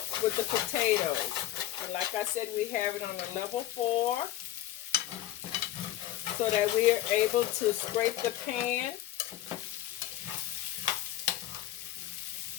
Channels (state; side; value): quieter; right; 13.9 dB